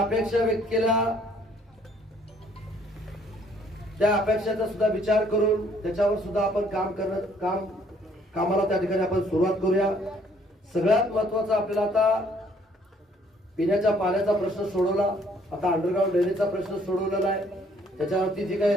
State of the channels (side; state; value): both; normal; correlation 0.63